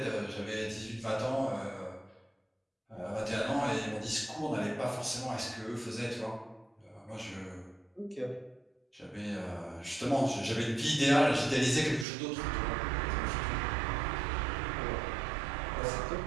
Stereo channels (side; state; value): left; drops out; at 12.1 s